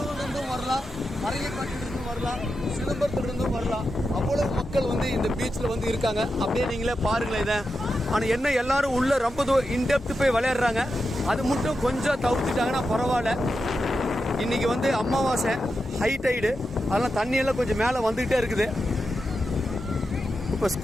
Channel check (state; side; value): normal; both; correlation 0.89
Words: வரலாம், பரங்கிப்பேட்டையிலிருந்தும் வரலாம், சிதம்பரத்துலேருந்தும் வரலாம். அவ்வளவு மக்கள் வந்து இந்த பீச்சில் வந்து இருக்காங்க. அப்படியே நீங்களே பாருங்களேன் இதை. ஆனால் என்ன எல்லாரும் உள்ள ரொம்ப இன்டெப்த் போய் விளையாடுறாங்க. அது மட்டும் கொஞ்சம் தவிர்த்துட்டாங்கன்னா பரவாயில்ல. இன்னைக்கு வந்து அமாவாசை, ஹை டைடு, அதெல்லாம் தண்ணியெல்லாம் கொஞ்சம் மேலே வந்துக்கிட்டே இருக்குது. இப்போ